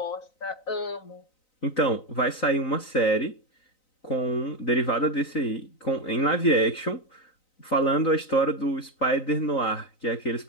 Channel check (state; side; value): late; right; 3.9 ms